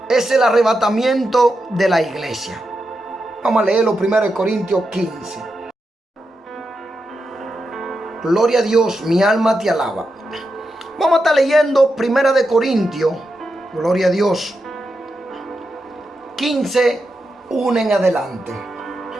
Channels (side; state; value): both; normal; correlation 0.87